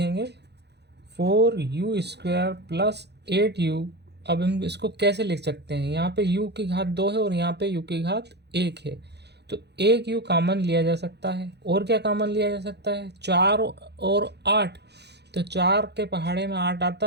4u² प्लस 8u। अब हम इसको कैसे लिख सकते हैं, यहाँ पे u की घात 2 है और यहाँ पे u की घात 1 है, तो एक u कॉमन लिया जा सकता है। और क्या कॉमन लिया जा सकता है, 4 और 8, तो 4 के पहाड़े में 8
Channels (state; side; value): late; left; 0.49 ms